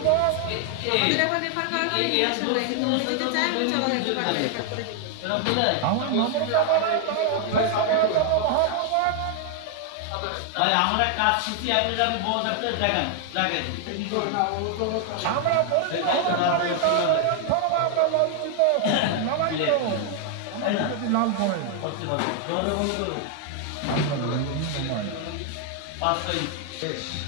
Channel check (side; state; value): both; different; correlation 0.00